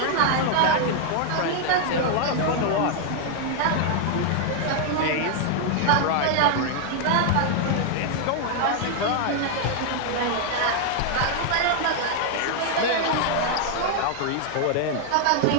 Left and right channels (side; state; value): both; different; correlation 0.00